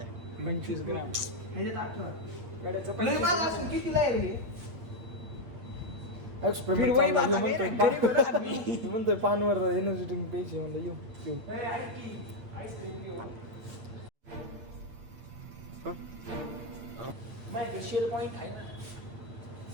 25 ग्राम. कितीला आहे रे? एक्सपेरिमेंट चालला. ह्यो म्हणतोय म्हणतोय पानवर एनर्जी ड्रिंक प्यायची. म्हणलं येऊ शेल पॉइंट आहे ना,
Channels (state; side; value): late; left; 8.7 ms